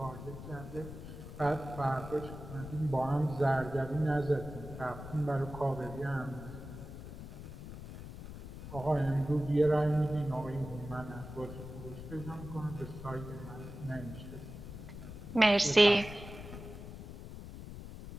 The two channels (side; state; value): left; noise; rumble, 11 dB below the sound